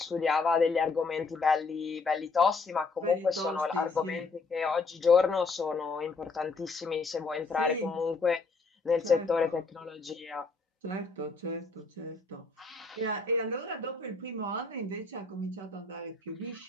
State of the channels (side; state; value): right; quieter; 4.0 dB